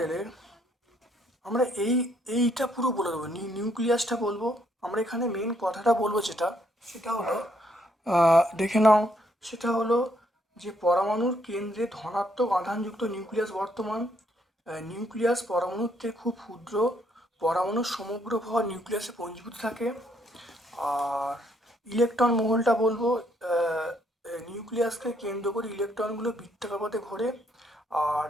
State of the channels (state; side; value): normal; both; correlation 0.70